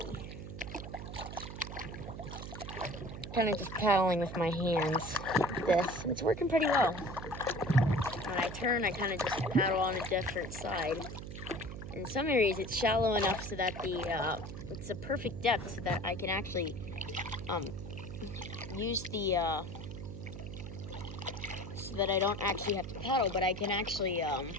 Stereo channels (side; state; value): right; noise; hum, 9 dB below the sound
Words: Kind of just paddling with my hands like this. It's working pretty well. When I turn, I kind of just paddle on a different side. In some areas, it's shallow enough so that it's a perfect depth so that I can actually use the so that I don't actually have to paddle, but I can actually